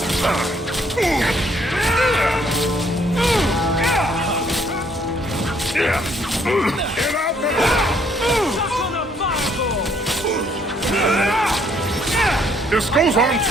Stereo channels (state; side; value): normal; both; correlation 0.66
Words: This goes on